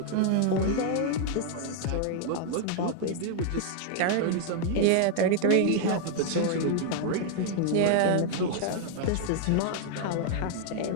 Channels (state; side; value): different; both; correlation 0.00